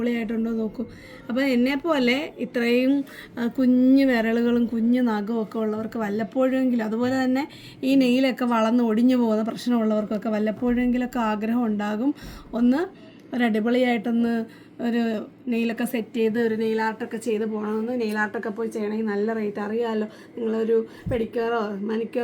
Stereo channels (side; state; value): both; identical; correlation 1.00